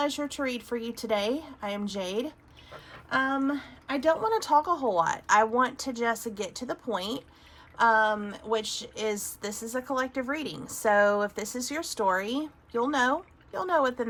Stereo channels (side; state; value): both; identical; correlation 1.00